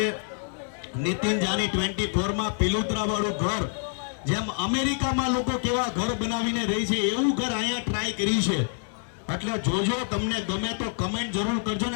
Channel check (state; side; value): silent; right; 60 dB below the other